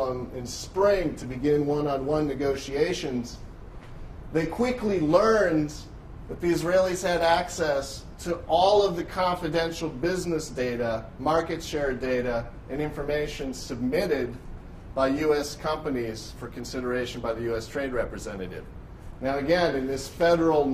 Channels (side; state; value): both; identical; correlation 1.00